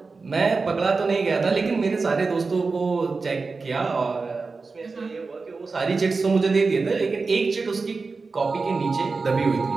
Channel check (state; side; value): quieter; left; 4.2 dB